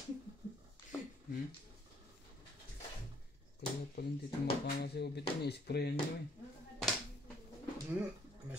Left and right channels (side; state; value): both; normal; correlation 0.64